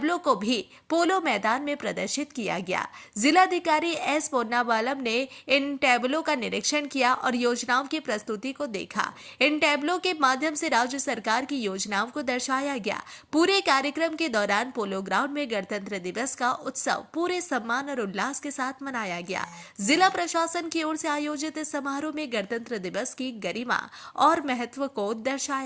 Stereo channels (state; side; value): identical; both; correlation 1.00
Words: को भी पोलो मैदान में प्रदर्शित किया गया। जिलाधिकारी एस पोन्नाबालम ने इन टैबलो का निरीक्षण किया और योजनाओं की प्रस्तुति को देखा। इन टैबलो के माध्यम से राज्य सरकार की योजनाओं को दर्शाया गया। पूरे कार्यक्रम के दौरान पोलो ग्राउंड में गणतंत्र दिवस का उत्सव पूरे सम्मान और उल्लास के साथ मनाया गया। जिला प्रशासन की ओर से आयोजित इस समारोह में गणतंत्र दिवस की गरिमा और महत्व को